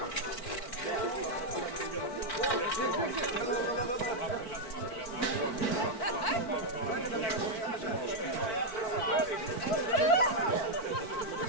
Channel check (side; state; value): right; late; 4.5 ms